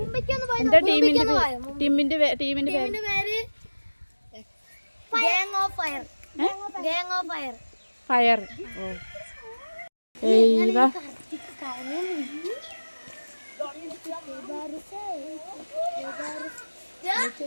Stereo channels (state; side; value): inverted; both; correlation -1.00